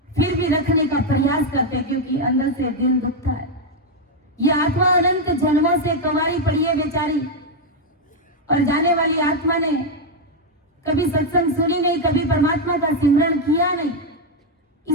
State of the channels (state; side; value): normal; both; correlation 0.02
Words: फिर भी रखने का प्रयास करते, क्योंकि अंदर से दिल दुखता है। ये आत्मा अनंत जन्मों से कुंवारी पड़ी है बेचारी, और जाने वाली आत्मा ने कभी सत्संग सुनी नहीं, कभी परमात्मा का सिमरन किया नहीं,